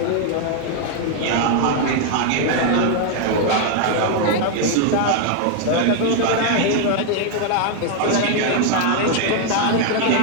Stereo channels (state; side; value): different; both; correlation 0.00